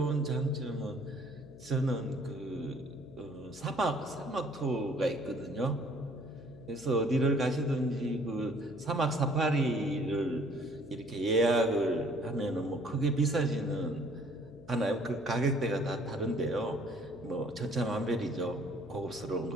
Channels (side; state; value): left; noise; hum, 18 dB below the sound